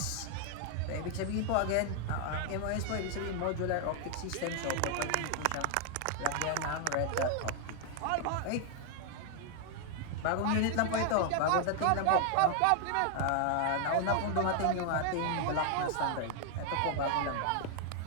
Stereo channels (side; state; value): both; different; correlation 0.00